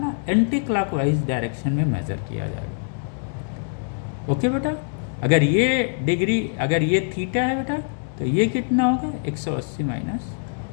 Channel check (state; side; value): silent; right; digital silence